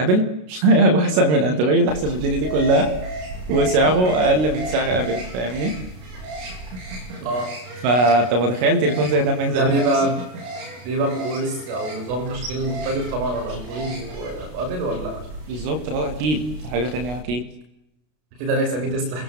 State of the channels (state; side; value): late; left; 33 ms